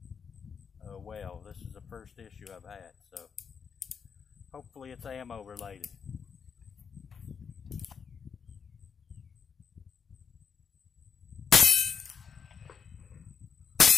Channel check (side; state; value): right; quieter; 6.4 dB